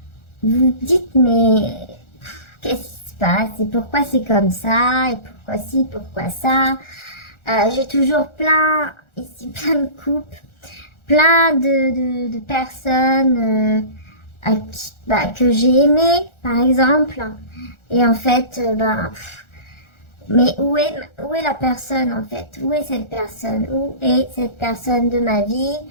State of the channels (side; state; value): right; late; 1.4 ms